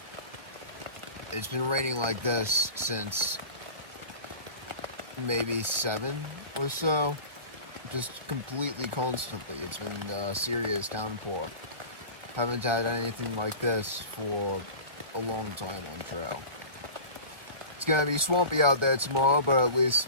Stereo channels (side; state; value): left; late; 1.1 ms